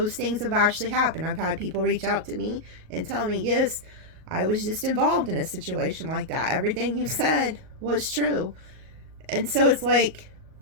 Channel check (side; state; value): left; late; 38 ms